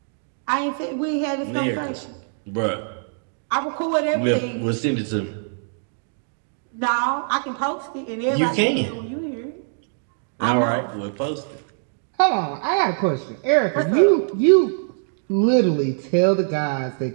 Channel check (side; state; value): left; silent; digital silence